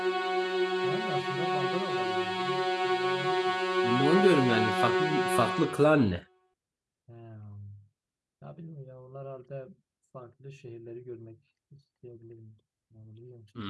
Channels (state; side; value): identical; both; correlation 1.00